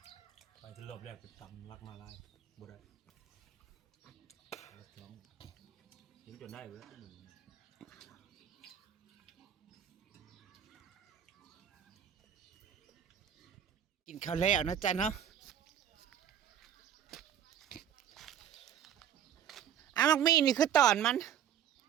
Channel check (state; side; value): quieter; left; 9.7 dB